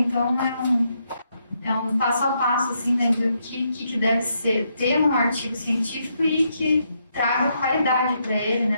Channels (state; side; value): inverted; both; correlation -0.78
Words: Então, é um passo a passo, assim, né? Do que deve ser, ter um artigo científico e que traga qualidade para ele,